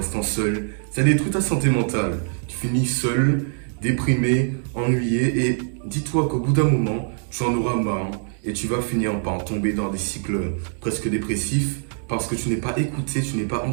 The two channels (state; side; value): silent; left; 63 dB below the other